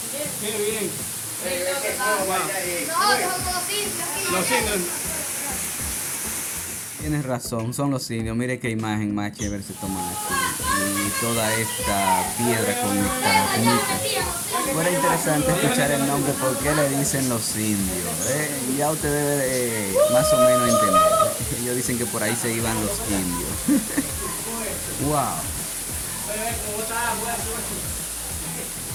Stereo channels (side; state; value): both; identical; correlation 1.00